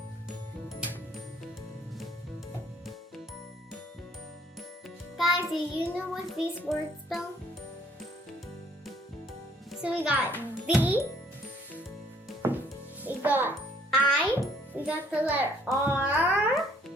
Guys, do you know what these words spell? So we got V, we got I, we got the letter R,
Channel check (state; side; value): normal; both; correlation 0.62